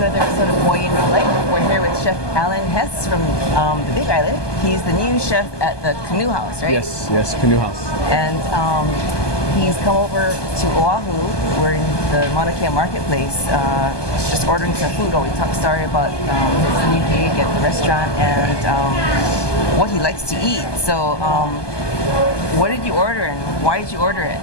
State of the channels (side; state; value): right; late; 1.2 ms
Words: episode of Boy in Real Life. We're here with Chef Alan Hess from the Big Island. He's the new chef at the Canoe House, right? Yes, Canoe House. And he's come over to Oahu. We're in the Mauna Kea marketplace, just ordering some food. We talked story about his new gig at the restaurant and what he likes to eat. So, what did you order and why did you order it?